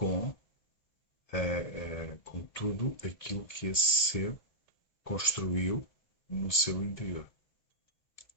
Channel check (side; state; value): right; late; 1.8 ms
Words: tudo aquilo que esse ser construiu no seu interior.